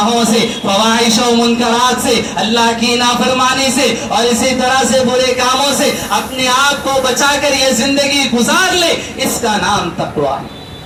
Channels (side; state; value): both; identical; correlation 1.00